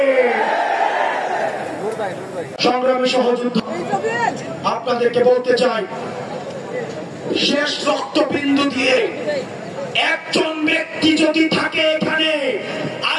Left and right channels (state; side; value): identical; both; correlation 1.00